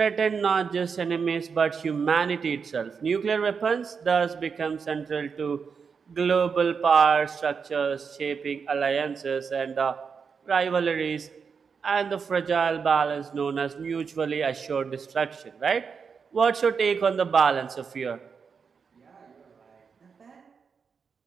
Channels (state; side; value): quieter; left; 5.9 dB